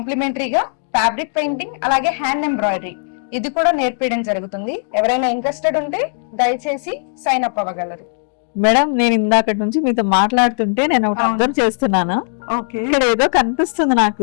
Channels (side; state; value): right; silent; digital silence